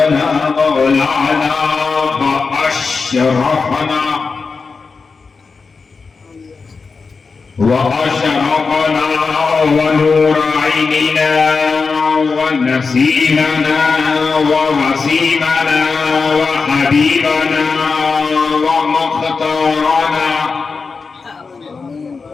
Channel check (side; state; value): right; quieter; 4.7 dB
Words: مولانا وأشرفنا وأشرقنا ونور عيننا ونسيمنا ووسيمنا وحبيبنا ومختارنا